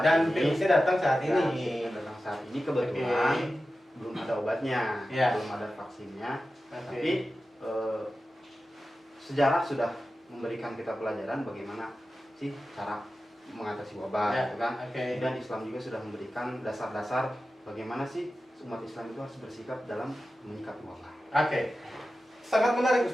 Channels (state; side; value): normal; both; correlation 0.94